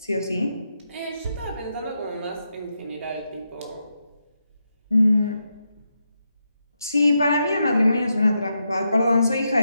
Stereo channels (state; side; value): inverted; both; correlation -0.84